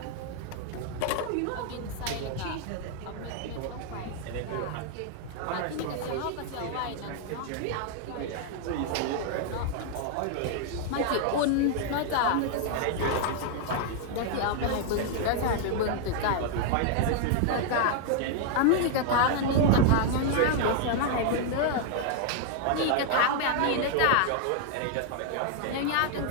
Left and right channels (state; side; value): different; both; correlation 0.00